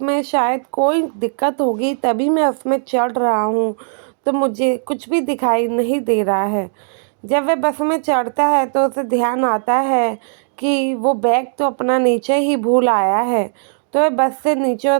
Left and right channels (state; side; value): silent; left; digital silence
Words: में शायद कोई दिक्कत होगी, तभी मैं उसमें चढ़ रहा हूँ, तो मुझे कुछ भी दिखाई नहीं दे रहा है। जब वह बस में चढ़ता है तो उसे ध्यान आता है कि वो बैग तो अपना नीचे ही भूल आया है। तो वह बस से नीचे